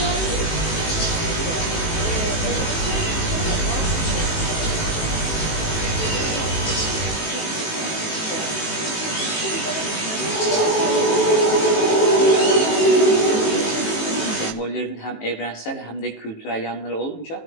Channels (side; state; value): right; late; 18 ms